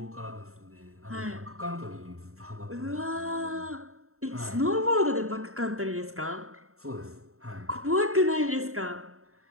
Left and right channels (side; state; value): left; late; 0.63 ms